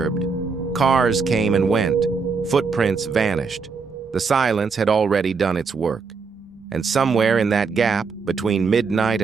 Cars came and went. Footprints vanished. The silence had already done its work. And somewhere in that gap, between midnight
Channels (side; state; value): left; quieter; 5.0 dB